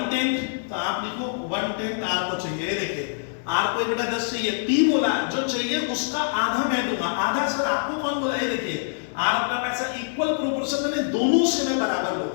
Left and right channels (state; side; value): silent; right; 60 dB below the other